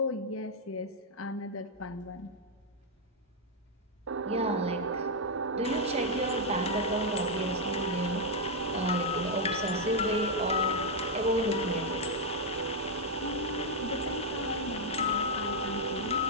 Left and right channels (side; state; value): both; normal; correlation -0.01